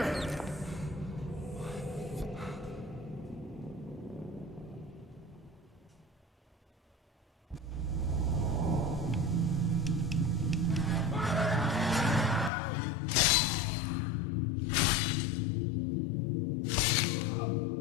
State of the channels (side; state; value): right; drops out; at 12.5 s